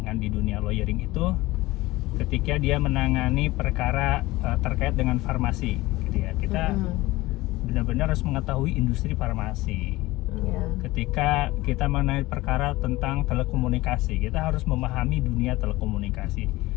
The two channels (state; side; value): quieter; right; 19.2 dB